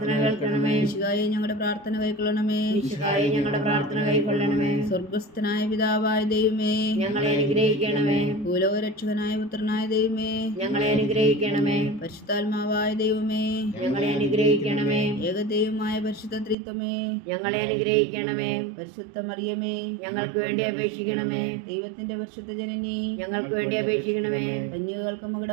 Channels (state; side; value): drops out; left; at 16.6 s